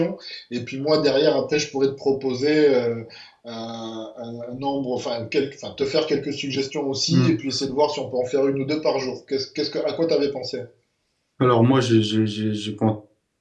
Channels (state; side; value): identical; both; correlation 1.00